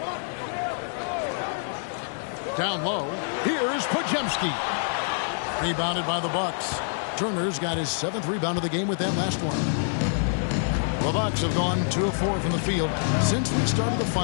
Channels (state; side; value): silent; right; 61 dB below the other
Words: Down low, here's Podziemski. Rebounded by the Bucks. Turner's got his 7th rebound of the game with that last one. The Bucks have gone 2 of 4 from the field since we started the